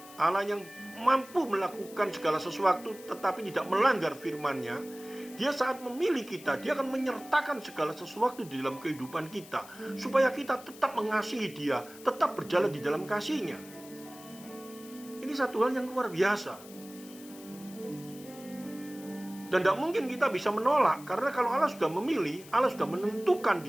Allah yang mampu melakukan segala sesuatu tetapi tidak melanggar firman-Nya, Dia saat memilih kita, Dia akan menyertakan segala sesuatu di dalam kehidupan kita supaya kita tetap mengasihi Dia, tetap berjalan di dalam kasih-Nya. Ini satu hal yang luar biasa. Dan tidak mungkin kita bisa menolak, karena kalau Allah sudah memilih, Allah sudah menentukan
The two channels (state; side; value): noise; left; hiss, 19 dB below the sound